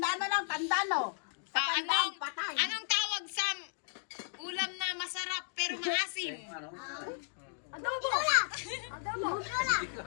na lang, tandaan no. Sa tandaan, patay. Anong tawag sa ulam na masarap pero maasim? Adobo. Adobo.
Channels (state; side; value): silent; right; digital silence